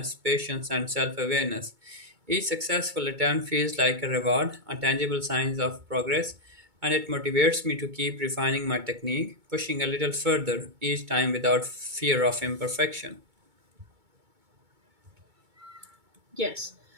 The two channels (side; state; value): left; late; 2.2 ms